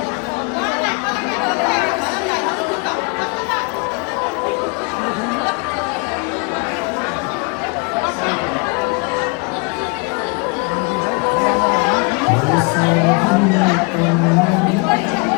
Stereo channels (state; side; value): quieter; right; 32.0 dB